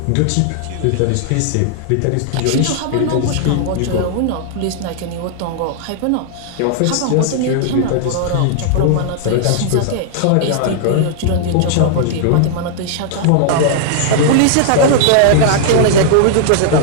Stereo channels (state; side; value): different; both; correlation -0.01